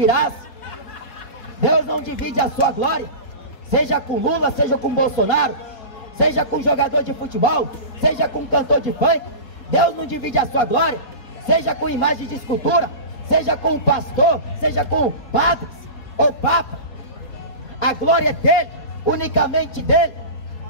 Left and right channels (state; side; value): late; right; 4.1 ms